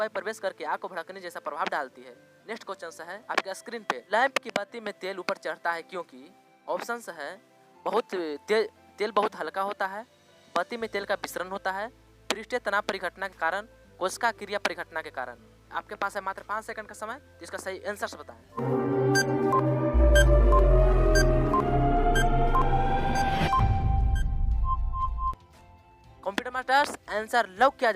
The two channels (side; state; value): both; identical; correlation 1.00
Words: प्रवेश करके आग को भड़कने जैसा प्रभाव डालती है। नेक्स्ट क्वेश्चन है आपके स्क्रीन पे, लैंप की बत्ती में तेल ऊपर चढ़ता है क्योंकि? ऑप्शंस है तेल बहुत हल्का होता है, बत्ती में तेल का विसरण होता है, पृष्ठीय तनाव परिघटना के कारण, कोशिका क्रिया परिघटना के कारण। आपके पास है मात्र 5 सेकंड का समय, तो इसका सही आंसर बताएं। कंप्यूटर मास्टर्स आंसर लॉक किया